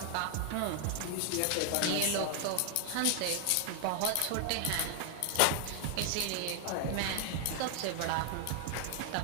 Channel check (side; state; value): both; different; correlation 0.00